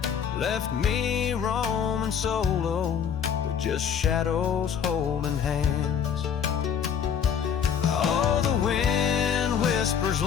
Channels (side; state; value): right; quieter; 7.8 dB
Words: left me roaming solo with just shadows holding hands. Oh, the wind whispers